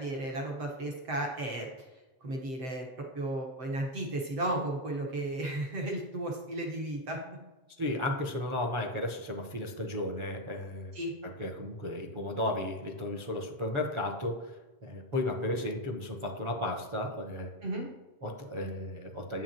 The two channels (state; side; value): late; left; 7.7 ms